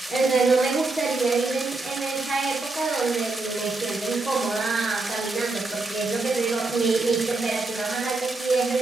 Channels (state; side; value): quieter; left; 3.4 dB